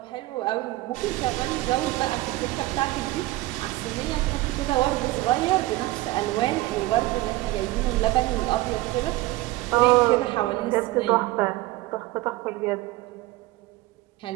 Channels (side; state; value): left; quieter; 18.7 dB